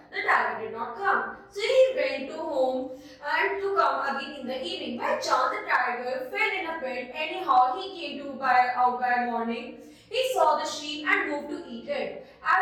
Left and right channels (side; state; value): both; identical; correlation 1.00